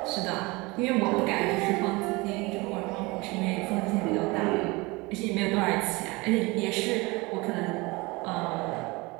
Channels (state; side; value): quieter; left; 24.3 dB